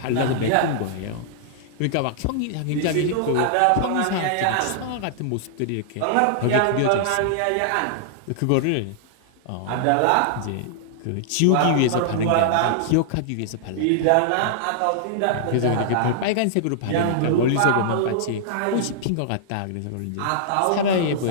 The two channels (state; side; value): different; both; correlation -0.01